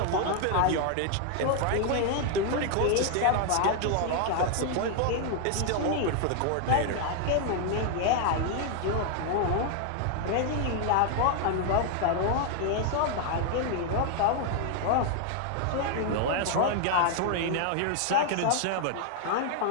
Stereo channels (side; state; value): both; different; correlation 0.00